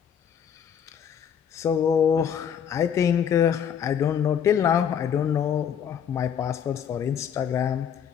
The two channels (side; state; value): right; quieter; 8.3 dB